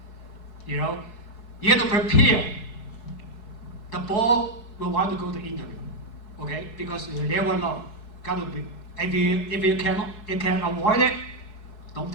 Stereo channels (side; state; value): right; late; 4.7 ms